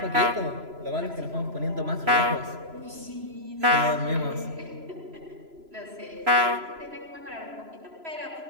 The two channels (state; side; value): late; left; 3.0 ms